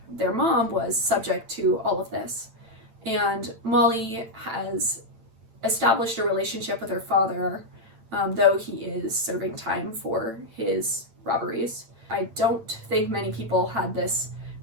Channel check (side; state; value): left; late; 8.9 ms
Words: their mom was subject to all of this. And Molly has established a relationship with her father, though he is serving time for his robberies. I don't think many people had this